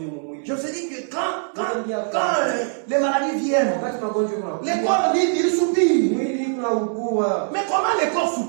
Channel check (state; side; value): silent; left; 61 dB below the other